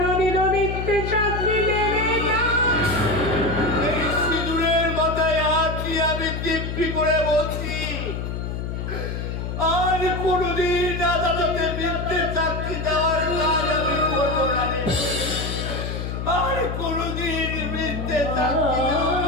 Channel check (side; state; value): left; noise; hum, 4 dB below the sound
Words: মিথ্যে সাক্ষী দেবে না। এই সিঁদুরের মাথায় হাত দিয়ে আমি দিব্যি করে বলছি, আর কোনোদিন আদালতে মিথ্যে সাক্ষী দেওয়ার কাজ আমি করবো না। আর কোনোদিন মিথ্যে সাক্ষী দেব